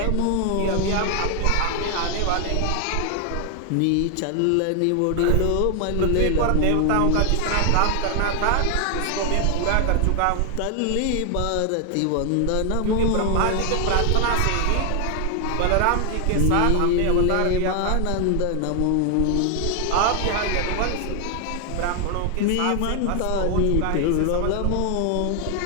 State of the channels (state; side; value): different; both; correlation 0.00